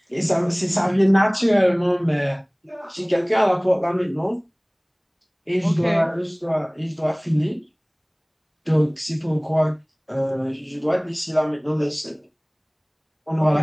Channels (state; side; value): identical; both; correlation 1.00